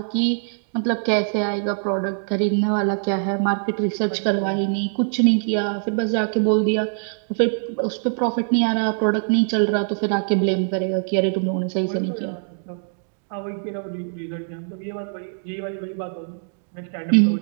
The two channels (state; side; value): silent; left; digital silence